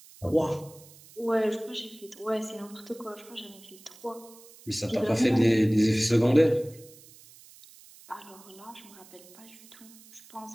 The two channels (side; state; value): right; noise; hiss, 22 dB below the sound